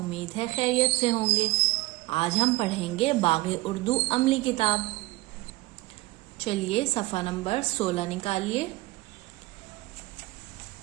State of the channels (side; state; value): left; quieter; 20.5 dB